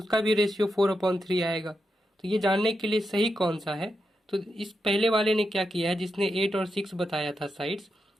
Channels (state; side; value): normal; both; correlation 0.86